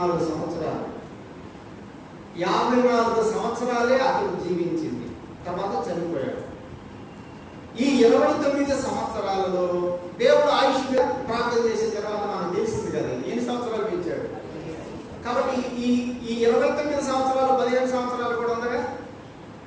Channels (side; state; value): both; identical; correlation 1.00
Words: సంవత్సరాలు. 54 సంవత్సరాలే అతడు జీవించింది. తర్వాత చనిపోయాడు. ఈ 29 సంవత్సరాలలో దేవుడు ఆయుష్ ప్రార్థన చేసిన తర్వాత మనకు తెలిసింది కదా ఎన్ని సంవత్సరాలు పెంచాడు. కాబట్టి ఈ 29 సంవత్సరాలు 15 సంవత్సరాలు కూడా ఉందగా.